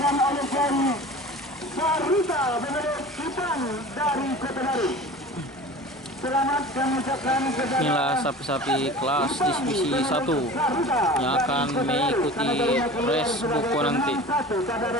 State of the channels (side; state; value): both; normal; correlation 0.38